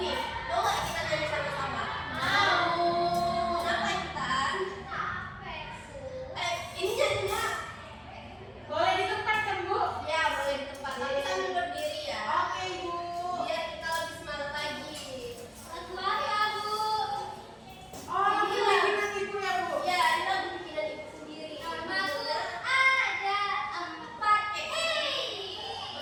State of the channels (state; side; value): identical; both; correlation 1.00